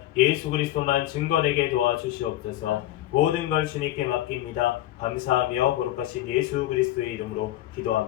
예수 그리스도만 증거되게 도와주시옵소서. 모든 걸 주님께 맡깁니다. 감사하며 거룩하신 예수 그리스도의 이름으로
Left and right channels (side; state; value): right; quieter; 14.4 dB